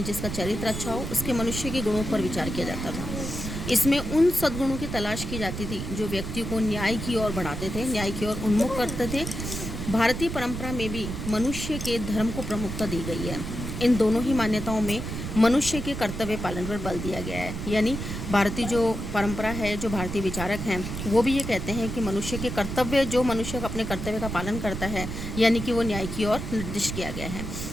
जिसका चरित्र अच्छा हो उसके मनुष्य के गुणों पर विचार किया जाता था। इसमें उन सद्गुणों की तलाश की जाती थी जो व्यक्ति को न्याय की ओर बढ़ाते थे, न्याय की ओर उन्मुख करते थे। भारतीय परंपरा में भी मनुष्य के धर्म को प्रमुखता दी गई है। इन दोनों ही मान्यताओं में मनुष्य के कर्तव्य पालन पर बल दिया गया है। यानी भारतीय जो परंपरा है, जो भारतीय विचारक हैं, वो भी ये कहते हैं कि मनुष्य के कर्तव्य, जो मनुष्य अपने कर्तव्य का पालन करता है, यानी कि वो न्याय की ओर निर्दिष्ट किया गया है।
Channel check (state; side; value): noise; right; rumble, 6 dB below the sound